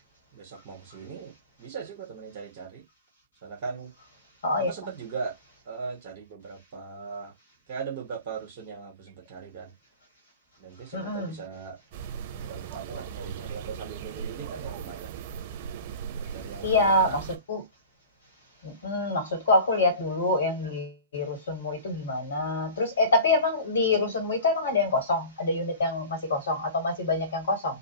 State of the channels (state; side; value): inverted; both; correlation -0.37